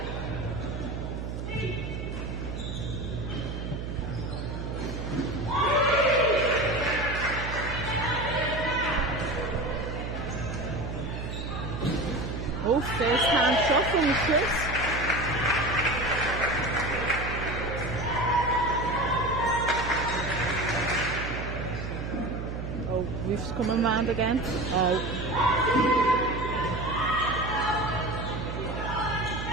Oh, first hand shot from the Swiss. Roof's coming round again. Oh.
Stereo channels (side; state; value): right; noise; hum, 5 dB below the sound